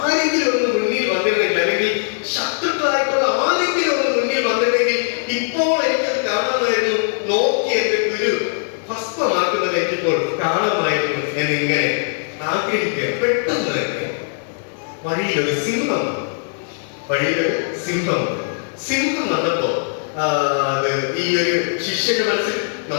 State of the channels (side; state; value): right; silent; 66 dB below the other